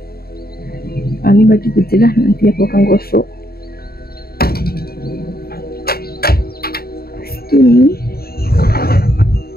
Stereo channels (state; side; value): late; right; 0.45 ms